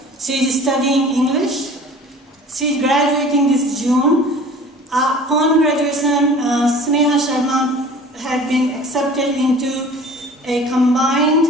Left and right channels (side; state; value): both; normal; correlation 0.44